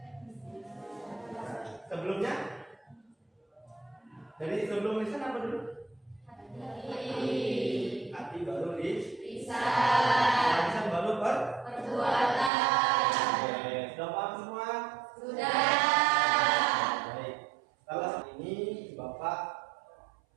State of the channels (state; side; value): drops out; left; at 12.5 s